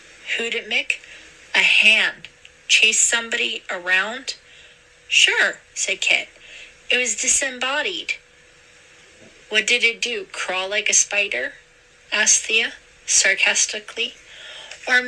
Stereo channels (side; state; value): both; identical; correlation 1.00